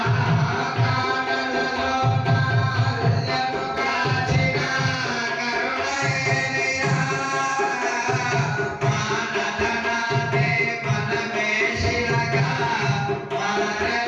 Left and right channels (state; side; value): identical; both; correlation 1.00